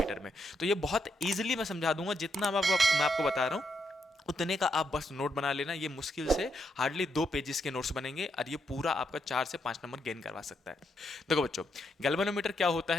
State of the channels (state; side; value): normal; both; correlation 0.79